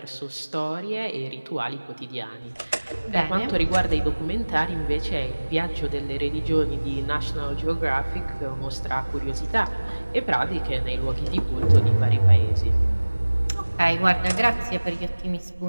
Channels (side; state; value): both; inverted; correlation -1.00